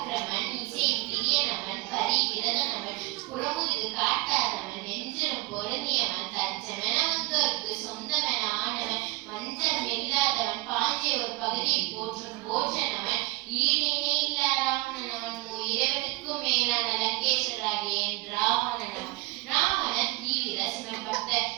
இசை பிரியனவன், பரி விரதனவன், புறமுதுகு காட்டாதவன், நெஞ்சிலும் பொருந்தியவன், தஞ்சமென வந்தோருக்கு சொந்தமென ஆனவன், மஞ்சள் இல்லாதவன், பாஞ்சிய ஒரு பகுதியை போற்றும் போற்றனவன், ஈடினே இல்லா ராவணனவன், இறைவனுக்கும் மேலான லங்கேஸ்வராகிய ராவணனவன். ராவணன் தீவிர சிவன் பக்தர்.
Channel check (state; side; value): quieter; left; 22.6 dB